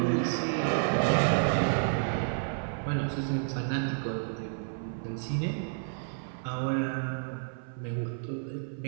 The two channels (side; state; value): left; silent; 57 dB below the other